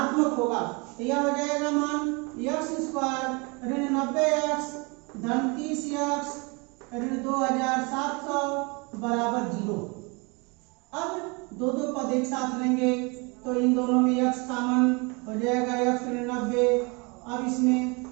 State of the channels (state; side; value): quieter; left; 29.6 dB